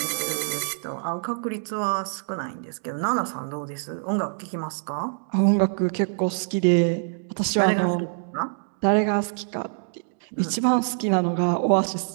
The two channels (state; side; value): silent; left; digital silence